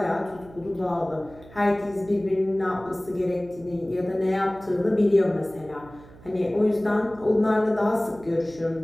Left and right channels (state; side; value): noise; right; hum, 21 dB below the sound